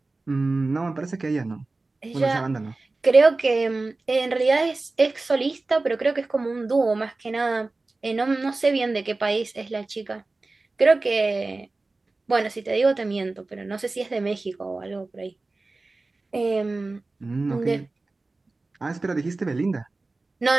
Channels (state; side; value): quieter; left; 3.3 dB